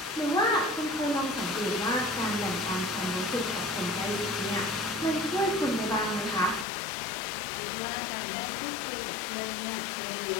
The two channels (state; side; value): drops out; right; at 6.7 s